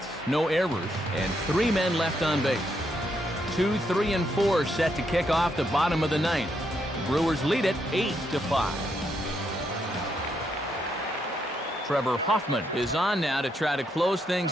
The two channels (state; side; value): normal; both; correlation 0.78